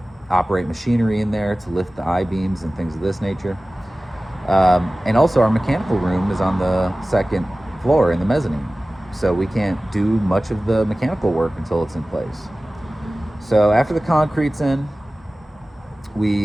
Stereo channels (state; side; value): normal; both; correlation 0.97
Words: operate machinery in there to lift the I-beams and things of this nature. And also our mechanical room is on the second floor in the mezzanine, so we can't do much of the mechanical work until it's in place. So after the concrete's in,